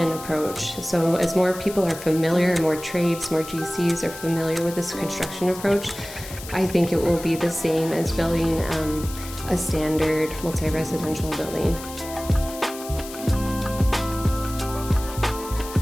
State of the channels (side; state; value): left; noise; hiss, 13 dB below the sound